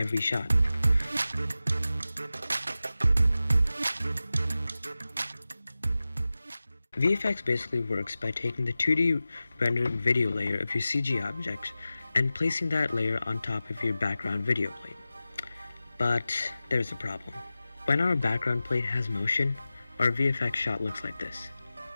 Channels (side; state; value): both; inverted; correlation -0.95